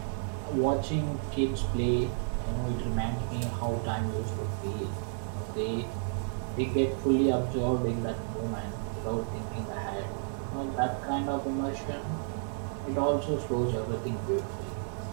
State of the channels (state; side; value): silent; left; digital silence